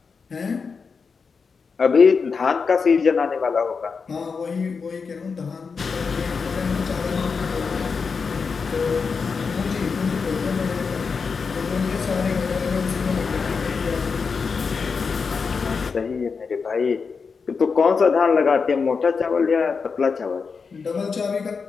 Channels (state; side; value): quieter; right; 5.3 dB